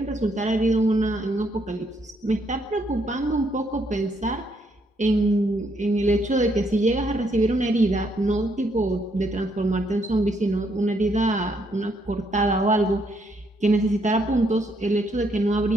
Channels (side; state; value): both; normal; correlation 0.73